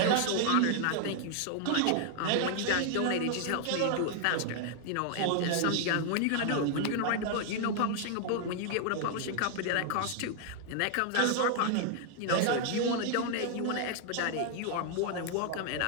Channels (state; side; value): different; both; correlation 0.00